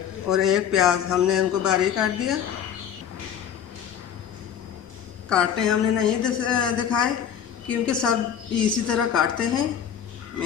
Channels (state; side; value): quieter; right; 8.9 dB